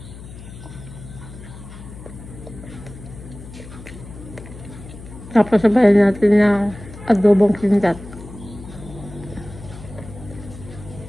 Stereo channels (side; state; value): left; noise; hum, 15 dB below the sound